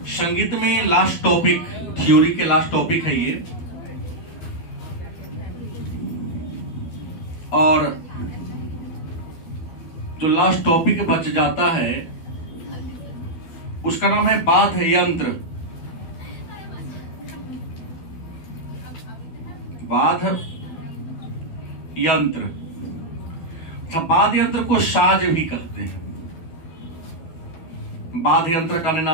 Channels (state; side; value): late; right; 12 ms